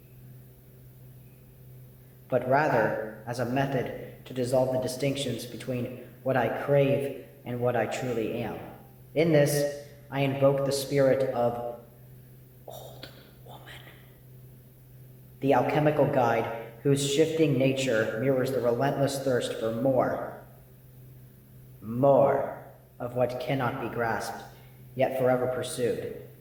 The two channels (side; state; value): both; identical; correlation 1.00